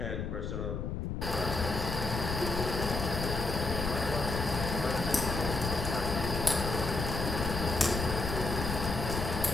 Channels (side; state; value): left; noise; rumble, 3 dB below the sound